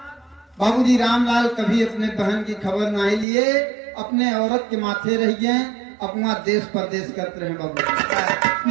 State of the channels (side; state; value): left; drops out; at 3.2 s